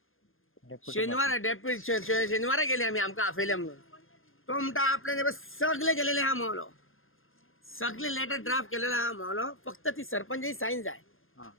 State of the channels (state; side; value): late; right; 0.60 ms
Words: शेनवारा गेले आमी आमकां आफयले म्हणून तो म्हणटा आपल्यान सगळे गेलेले आहा म्हणलो सगळे लेटर ड्राफ्ट केलेले आहा म्हणलो फक्त ती सरपंचाची सायन जाय